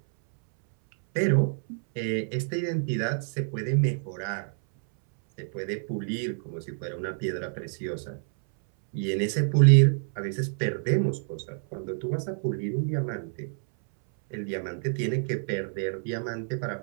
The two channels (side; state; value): left; silent; 59 dB below the other